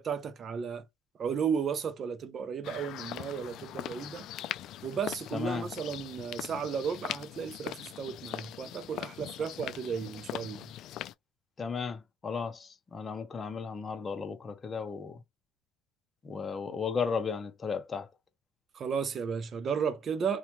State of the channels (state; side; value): normal; both; correlation 0.65